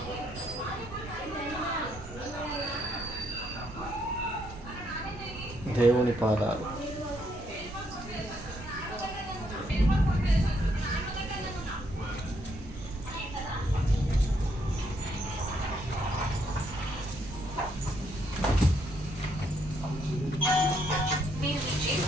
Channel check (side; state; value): both; normal; correlation 0.73